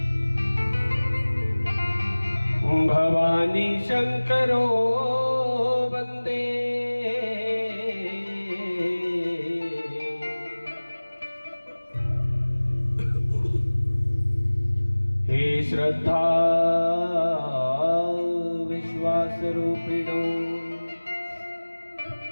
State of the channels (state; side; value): inverted; both; correlation -1.00